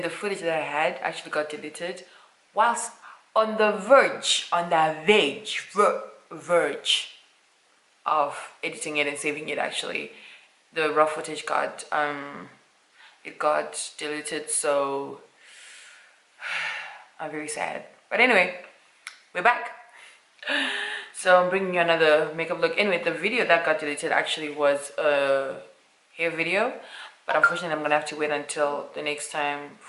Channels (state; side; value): identical; both; correlation 1.00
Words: the footage that I had actually got deleted whilst on the verge of editing it and saving it. Actually the raw footage got deleted, so I'm very sad. But anyway, we're back. So I'm bringing you another makeup look. Anyway, the video that got deleted actually was a hair video, but unfortunately I'm gonna have to wait until the next time